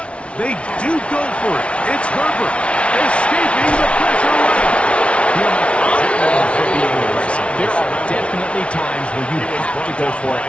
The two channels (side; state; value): right; late; 0.060 ms